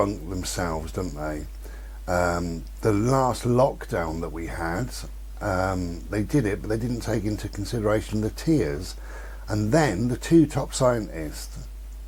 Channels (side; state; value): both; identical; correlation 1.00